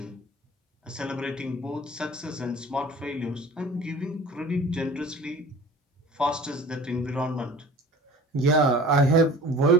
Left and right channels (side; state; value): both; normal; correlation 0.43